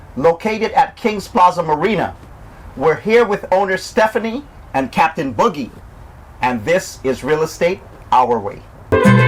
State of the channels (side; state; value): both; identical; correlation 1.00